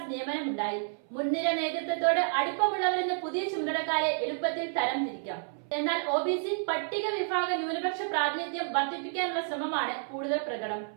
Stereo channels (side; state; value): left; silent; 58 dB below the other